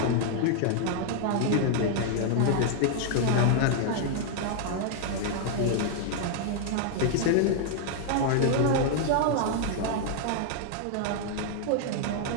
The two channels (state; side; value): different; both; correlation 0.00